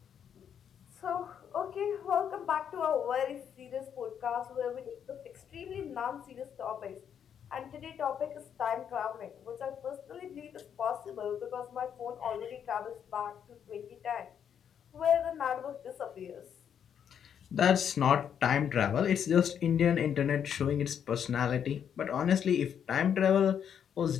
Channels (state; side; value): quieter; right; 8.4 dB